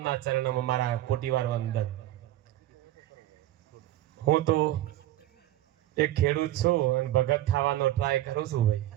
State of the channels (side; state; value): left; quieter; 14.4 dB